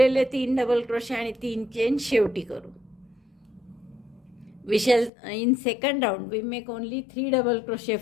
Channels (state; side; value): drops out; right; at 5.1 s